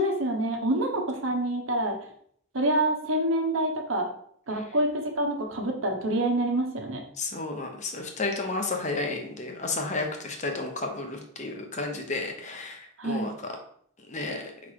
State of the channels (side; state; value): both; normal; correlation -0.04